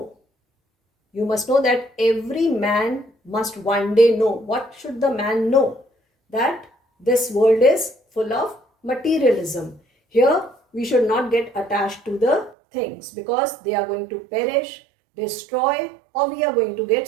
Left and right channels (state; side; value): drops out; left; at 12.6 s